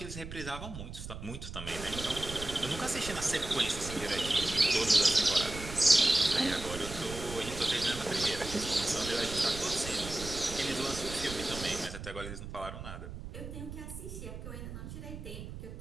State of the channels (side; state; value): right; noise; rumble, 10 dB below the sound